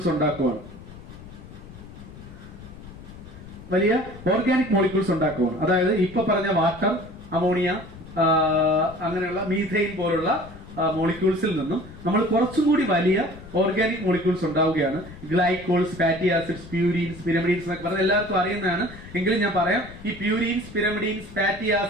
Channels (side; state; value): left; noise; rumble, 16 dB below the sound